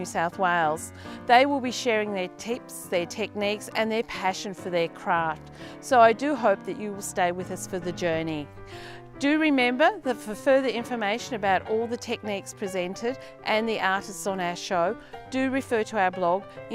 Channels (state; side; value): identical; both; correlation 1.00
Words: South Wales. They will be sharing their tips, their techniques and their passion for their craft. So I do hope that you will stay with us for the journey. Do remember that for further information about all the techniques presented and the artists on our show, do refer to our blog.